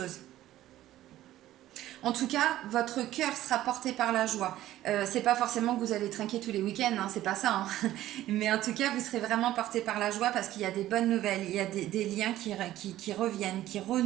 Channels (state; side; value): quieter; left; 14.1 dB